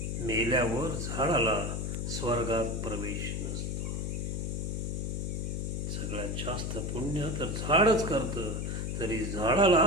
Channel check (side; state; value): left; noise; hum, 2 dB below the sound